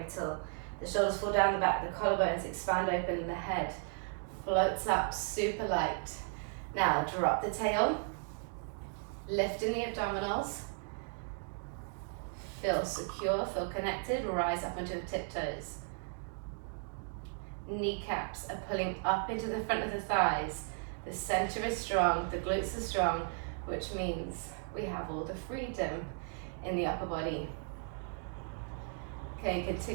till the shoulders fall down the back, the collarbones expand open, and the head floats up super light. Now drop the tail, lift in the abdominals, feel secure, feel connected, rise up onto the tiptoes. kneecaps are pulling up into the front of the thighs. The center is strong, the glutes are strong, which means we have all the freedom in the upper body. Okay,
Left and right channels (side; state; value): left; silent; 54 dB below the other